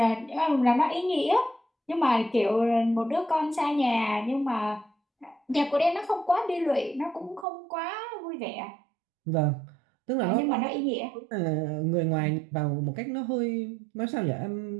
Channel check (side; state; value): left; drops out; at 7.5 s